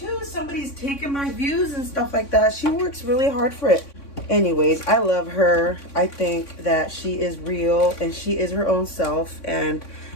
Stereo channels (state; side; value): late; right; 3.6 ms